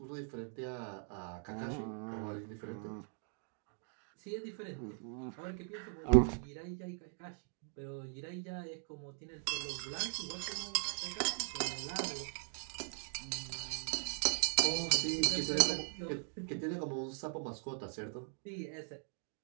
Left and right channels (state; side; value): silent; left; 51 dB below the other